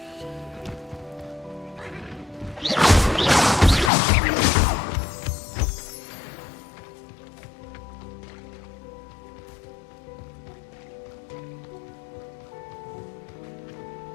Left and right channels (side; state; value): right; drops out; at 3.9 s